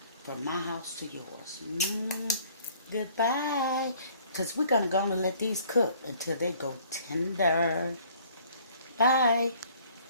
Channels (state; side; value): inverted; both; correlation -0.56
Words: from my house to yours. Goodbye. Because we're going to go and let these cook until they go tender. Bye.